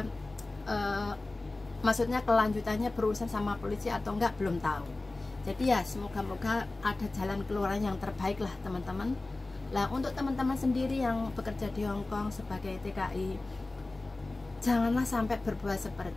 maksudnya kelanjutannya berurusan sama polisi atau enggak, belum tahu. Jadi ya semoga-moga ada jalan keluar yang terbaik lah teman-teman. Lah untuk teman-teman sendiri yang bekerja di Hong Kong sebagai TKI, janganlah sampai berbuat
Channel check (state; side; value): quieter; right; 3.1 dB